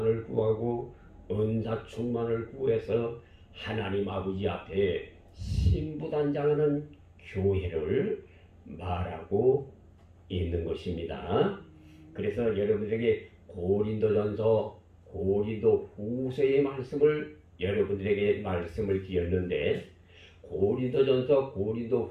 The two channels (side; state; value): both; identical; correlation 1.00